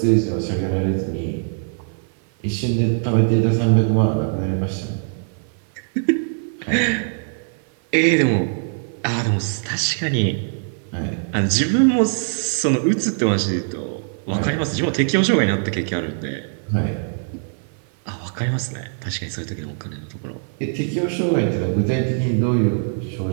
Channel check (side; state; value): left; silent; 55 dB below the other